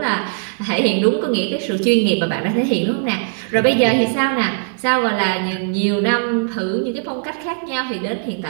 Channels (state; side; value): silent; left; digital silence